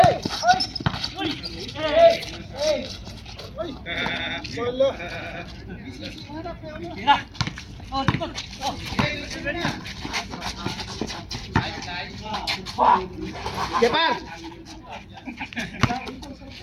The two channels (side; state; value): both; identical; correlation 1.00